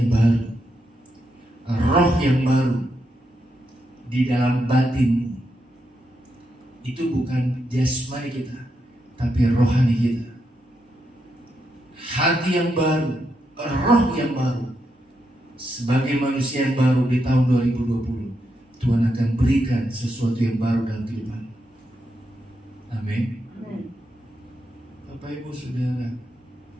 baru, roh yang baru di dalam batinmu. Itu bukan jasmani kita, tapi rohani kita. Hati yang baru, roh yang baru. Sebagai manusia yang baru di tahun 2020, Tuhan akan berikan sesuatu yang baru dalam kehidupan. Amin. Bapak Ibu Saudara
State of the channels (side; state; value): both; normal; correlation 0.82